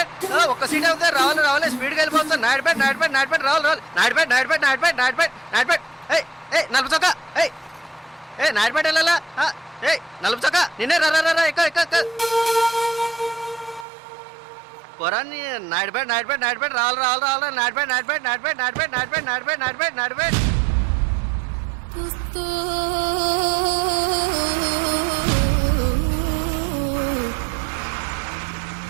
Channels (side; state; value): left; drops out; at 13.9 s